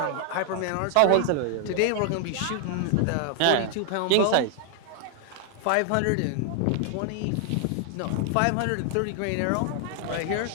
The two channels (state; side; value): different; both; correlation 0.00